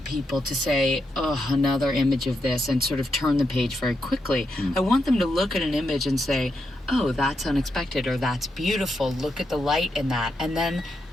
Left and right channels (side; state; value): both; normal; correlation 0.83